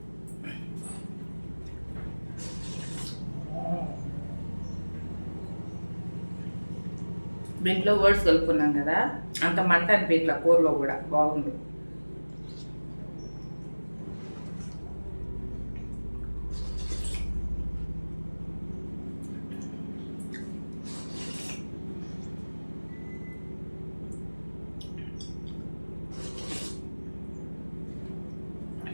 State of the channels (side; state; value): both; inverted; correlation -1.00